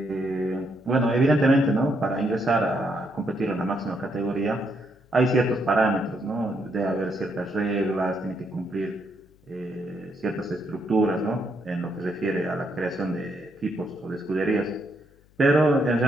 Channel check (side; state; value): left; noise; hum, 30 dB below the sound